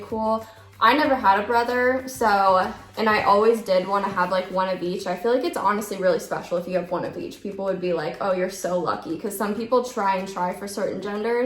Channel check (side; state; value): both; identical; correlation 1.00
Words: cool. I never had a brother, so, and I always did want to have like one of each. I feel like it's honestly really special if you have one of each. People would be like, oh, you're so lucky, because some people try for certain